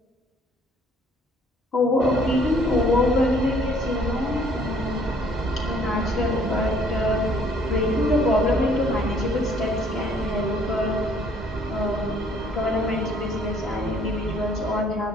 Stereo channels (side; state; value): both; normal; correlation 0.60